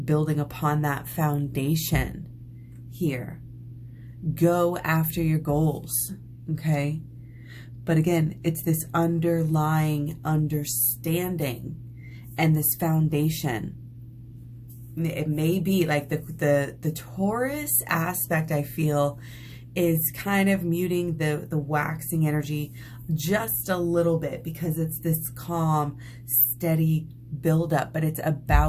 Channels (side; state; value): both; identical; correlation 1.00